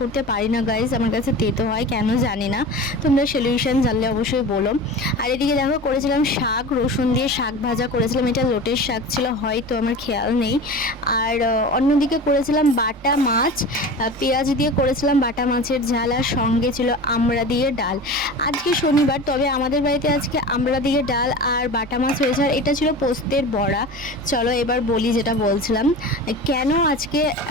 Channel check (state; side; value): normal; both; correlation 0.33